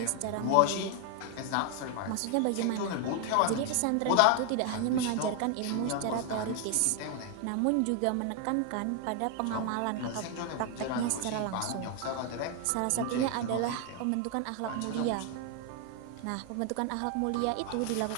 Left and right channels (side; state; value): both; different; correlation 0.00